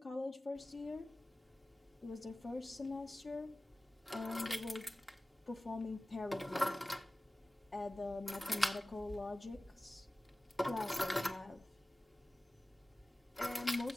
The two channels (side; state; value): both; normal; correlation 0.97